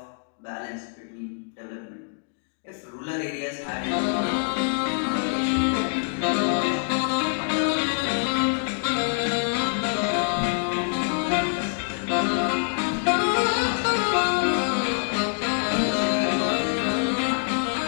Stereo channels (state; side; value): silent; right; digital silence